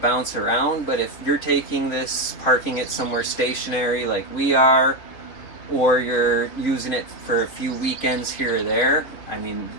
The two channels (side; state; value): right; late; 3.5 ms